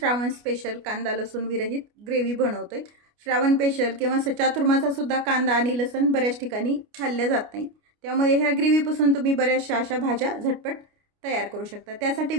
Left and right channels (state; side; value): late; left; 29 ms